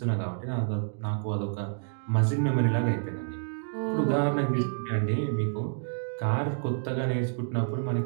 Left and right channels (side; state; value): left; silent; digital silence